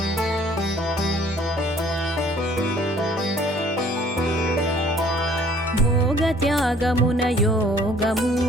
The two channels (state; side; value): normal; both; correlation 0.57